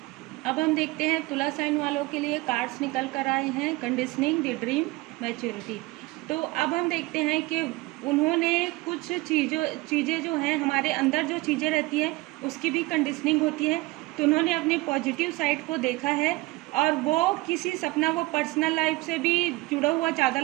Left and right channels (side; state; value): left; quieter; 21.6 dB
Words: अब हम देखते हैं तुला साइन वालों के लिए कार्ड्स निकल कर आए हैं, कंडीशनिंग द ड्रीम मैच्योरिटी। तो अब हम देखते हैं कि उन्होंने कुछ चीज़ें जो हैं, हमारे अंदर जो चीज़ें रहती हैं उसकी भी कंडीशनिंग होती है। तो उन्होंने अपनी पॉजिटिव साइड को देखा है और वो किसी सपना, वो पर्सनल लाइफ से भी जुड़ा हुआ ज़्यादा